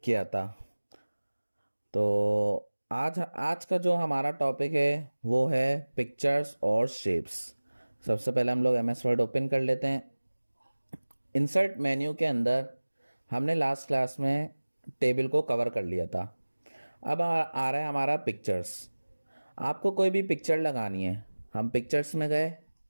किया था। तो आज आज का जो हमारा टॉपिक है वो है पिक्चर्स और शेप्स। सबसे पहले हम लोग एमएस वर्ड ओपन कर लेते हैं। इंसर्ट मेन्यू के अंदर हमने लास्ट क्लास में टेबल को कवर कर लिया था। अब आ रहा है हमारा पिक्चर्स। आपको कोई भी पिक्चर लगानी है, हम पिक्चर्स में गए।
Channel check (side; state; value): both; inverted; correlation -1.00